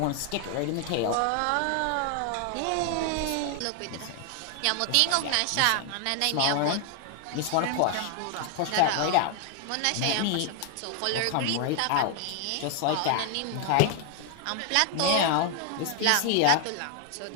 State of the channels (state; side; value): different; both; correlation 0.00